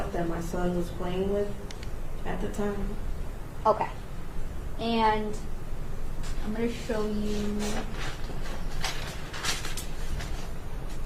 that my son was playing with at the time. Okay. And I'm going to show you.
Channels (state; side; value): identical; both; correlation 1.00